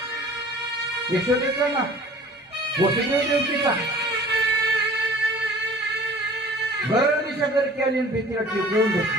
यशोदेचा ना, वसुदेव देवकीचा. दिशा करके आली भीतीला टिकवून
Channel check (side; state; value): both; normal; correlation 0.47